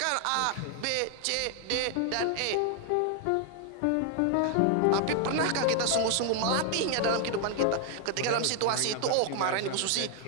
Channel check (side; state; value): both; different; correlation 0.00